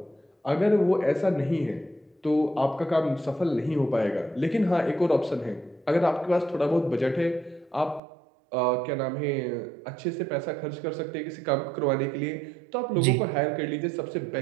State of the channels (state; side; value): drops out; left; at 8.0 s